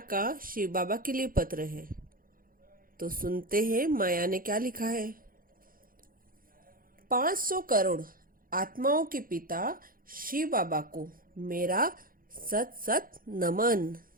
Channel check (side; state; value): left; late; 0.41 ms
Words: का शिव बाबा के लिए पत्र है, तो सुनते हैं माया ने क्या लिखा है। 500 करोड़ आत्माओं के पिता शिव बाबा को मेरा सत सत नमन।